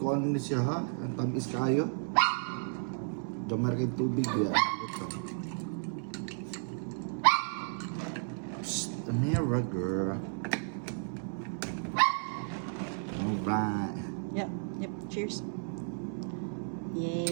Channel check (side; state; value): left; silent; 56 dB below the other